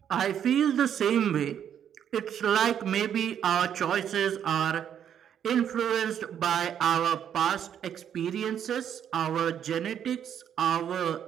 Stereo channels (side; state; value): left; quieter; 9.1 dB